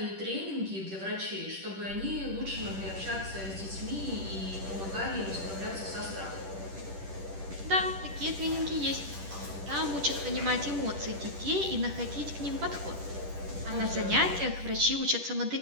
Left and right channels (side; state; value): left; late; 10 ms